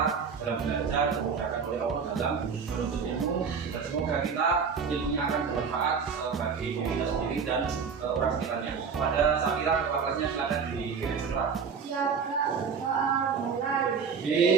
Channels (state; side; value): quieter; left; 6.0 dB